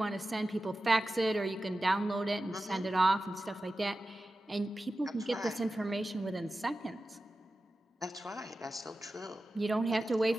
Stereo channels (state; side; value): normal; both; correlation 0.94